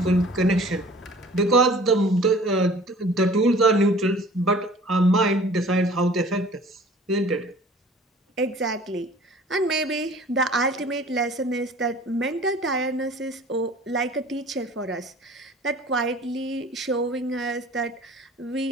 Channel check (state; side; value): normal; both; correlation 0.48